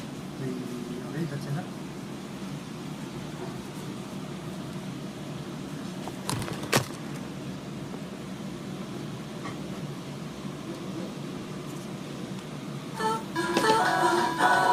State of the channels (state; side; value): identical; both; correlation 1.00